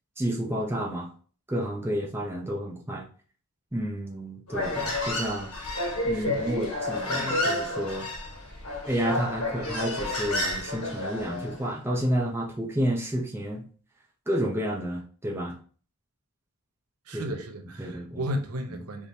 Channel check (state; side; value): normal; both; correlation 0.44